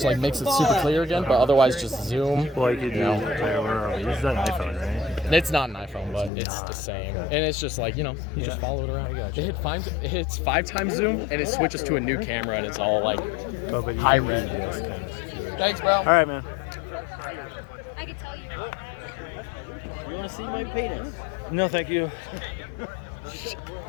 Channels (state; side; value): drops out; right; at 6.3 s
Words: like makes it super clear again, but otherwise just zoom. Like you do. This is an iPhone, right? It's not an iPhone, but it's the same. And it's just like, you just follow it around. It hits 5x zoom, and it switches to a new camera, and it's all like high res. Thanks, bro. All right, man. I could tell you. You want to see my penis? No, thank you.